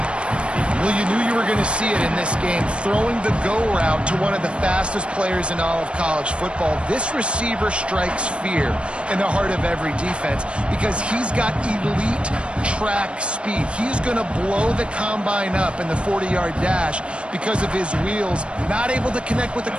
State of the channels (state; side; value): late; left; 0.058 ms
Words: Well, you knew you were going to see it in this game. Throwing the go route to one of the fastest players in all of college football. This receiver strikes fear in the heart of every defense because he's got elite track speed. He's going to blow the combine up in the 40-yard dash because of his wheels. Not able to connect with the